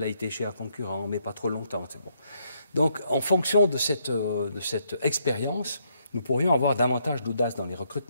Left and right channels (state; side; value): inverted; both; correlation -0.74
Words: ait été chez un concurrent, mais pas trop longtemps. C'est bon. Donc, en fonction de cette expérience, nous pourrions avoir davantage d'audace dans les